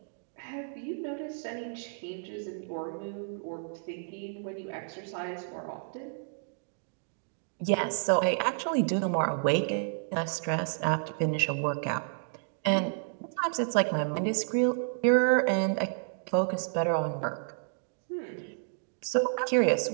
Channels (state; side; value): silent; left; digital silence